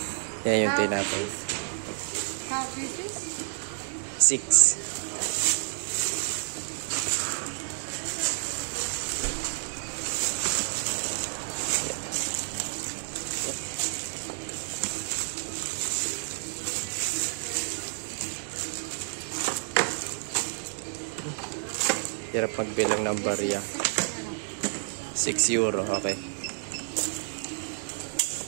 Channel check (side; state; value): left; silent; digital silence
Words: Yan yung tinapay. 6. Hirap magbilang ng barya. 6 euro, okay.